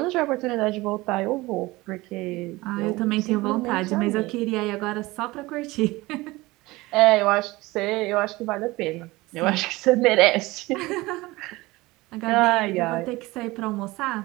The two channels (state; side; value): quieter; left; 20.7 dB